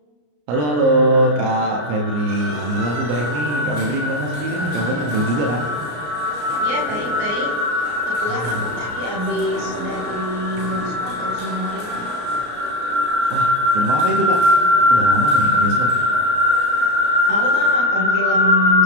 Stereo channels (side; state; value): left; late; 34 ms